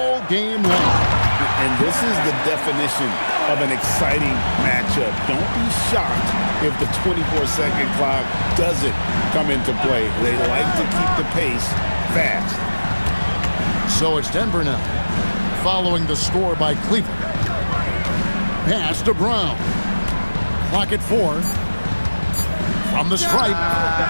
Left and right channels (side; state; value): both; inverted; correlation -1.00